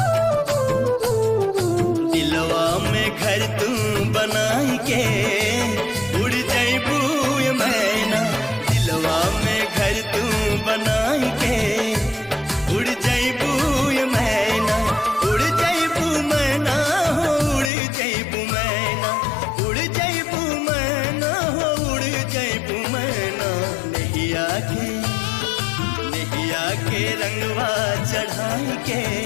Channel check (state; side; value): drops out; right; at 17.7 s